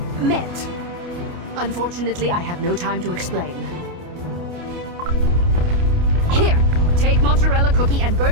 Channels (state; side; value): late; left; 28 ms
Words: met. Unfortunately, I have no time to explain. Here, take mozzarella cookie and